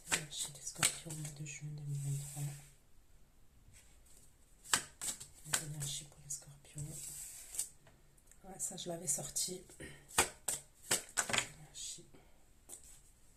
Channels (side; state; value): both; identical; correlation 1.00